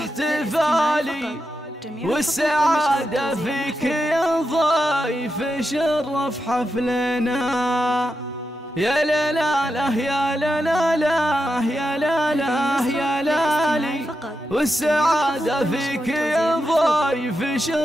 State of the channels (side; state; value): both; normal; correlation 0.87